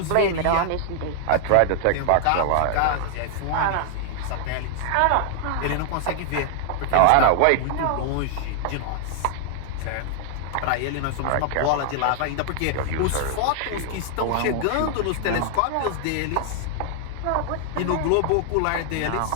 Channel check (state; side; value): different; both; correlation 0.00